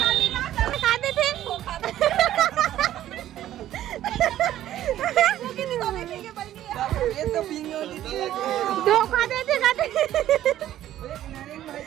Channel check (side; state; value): left; quieter; 12.7 dB